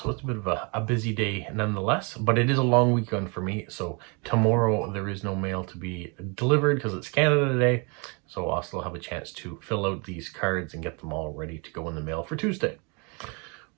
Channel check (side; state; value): left; quieter; 32.7 dB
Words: so it's a bit of a busy day nonetheless. But it is a long weekend for me. So tomorrow there is no mail to be delivered because it's Canada Day. So I'll still have a chance to fill out these cards and get them all ready to go in the mail for Tuesday.